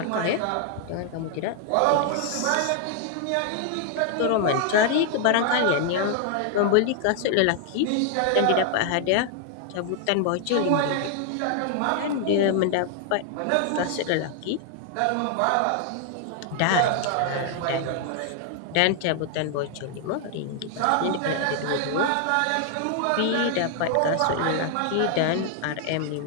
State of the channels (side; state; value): both; different; correlation 0.00